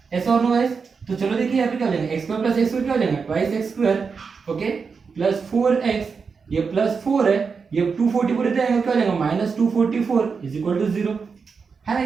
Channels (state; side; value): quieter; left; 5.4 dB